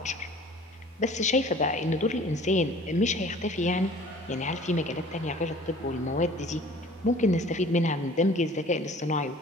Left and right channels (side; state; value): both; normal; correlation 0.49